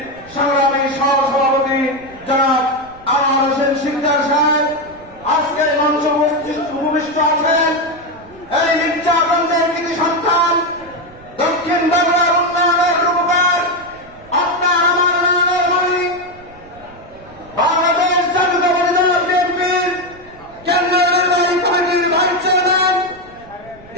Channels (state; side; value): noise; right; rumble, 23 dB below the sound